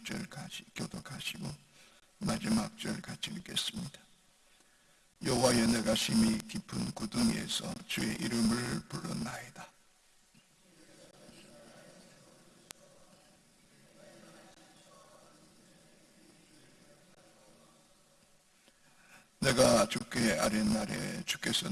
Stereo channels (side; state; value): both; identical; correlation 1.00